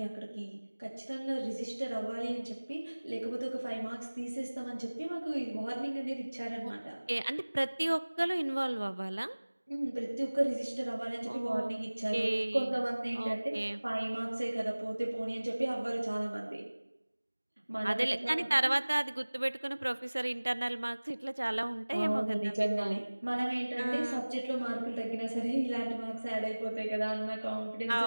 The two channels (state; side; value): inverted; both; correlation -1.00